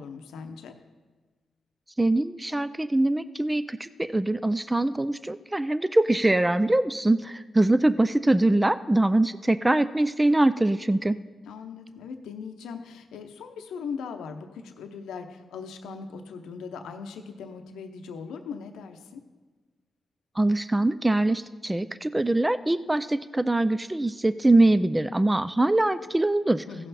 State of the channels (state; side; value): normal; both; correlation 0.98